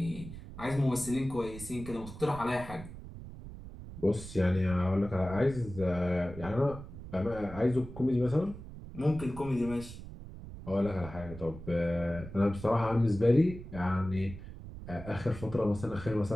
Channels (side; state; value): right; noise; rumble, 13 dB below the sound